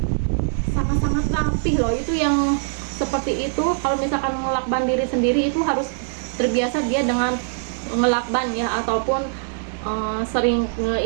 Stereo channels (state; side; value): silent; left; digital silence